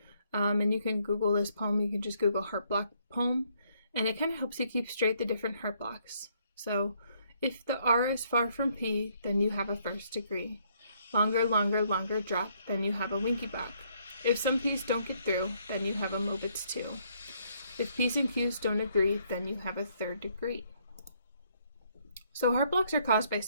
And you can Google this poem, you can just Google heart block poem, and it kind of helps you keep straight the different heart blocks. So if the R is far from P, then you have a first degree. Longer, longer, longer drop, then you have a winky block. If some P's don't get through, then you have a Mobitz 2. If P's and Q's don't agree, then you have a third degree. So heart blocks are caused by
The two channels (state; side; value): inverted; both; correlation -0.69